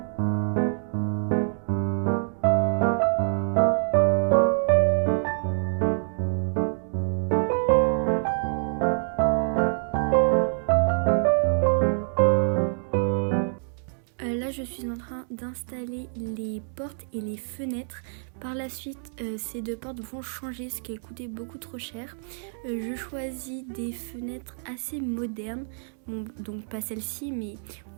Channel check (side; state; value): left; silent; digital silence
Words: Là, je suis en train d'installer les portes et les fenêtres. Par la suite, ces deux portes vont changer, ce qui a coûté beaucoup trop cher. Je choisis des fenêtres assez modernes. Bon, donc pas celle-ci, mais